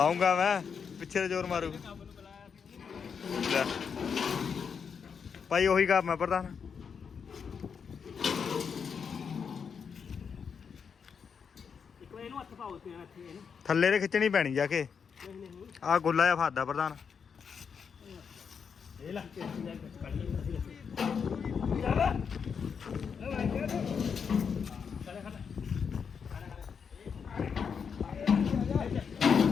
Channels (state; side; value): quieter; right; 6.5 dB